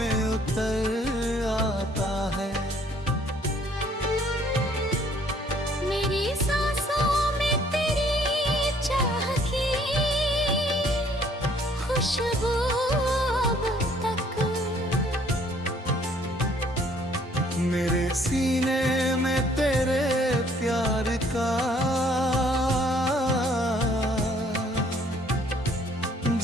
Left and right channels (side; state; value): both; normal; correlation 0.61